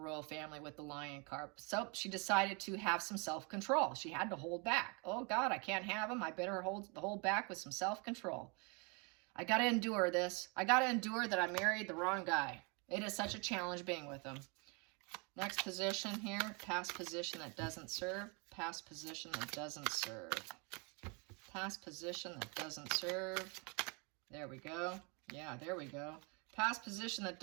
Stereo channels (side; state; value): left; quieter; 32.1 dB